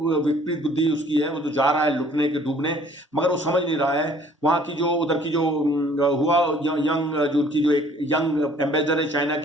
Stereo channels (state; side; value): normal; both; correlation 0.56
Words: विपरीत बुद्धि उसकी है. वो तो जा रहा है लुटने के, डूबने, मगर वो समझ नहीं रहा है. वहां की जो उधर की जो हुआ यंग, जो उनकी जो एक यंग एम्बेसडर है चाइना